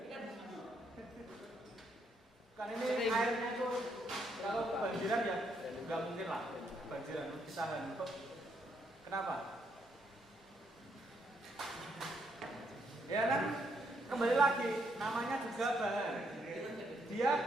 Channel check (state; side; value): normal; both; correlation 0.74